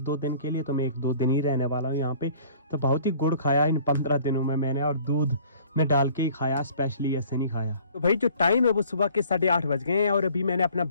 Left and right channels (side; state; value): both; inverted; correlation -0.53